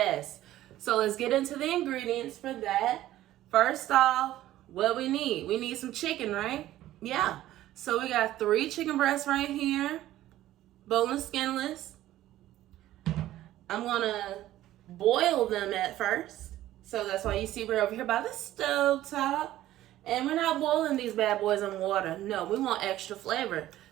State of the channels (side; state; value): left; quieter; 14.2 dB